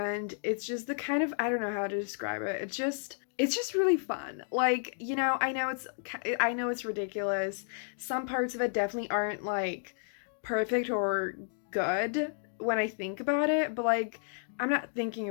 it's just the kind of, I don't know how to describe it. It's just really fun. Like, you know, I know it's ridiculous. Some parts of it definitely aren't like perfect or good when I think about it, but like I'm not thinking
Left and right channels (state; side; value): silent; right; digital silence